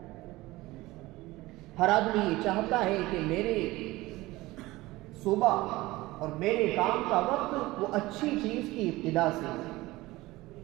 ہر آدمی یہ چاہتا ہے کہ میرے صبح اور میرے کام کا وقت وہ اچھی چیز کی ابتدا سے ہو،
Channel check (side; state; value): left; quieter; 19.3 dB